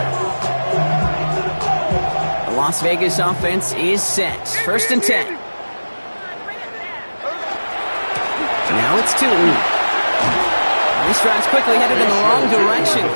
The Las Vegas offense is set. 1st and 10. Now it's Tootin. This drive's quickly headed in the wrong direction.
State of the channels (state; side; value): inverted; both; correlation -1.00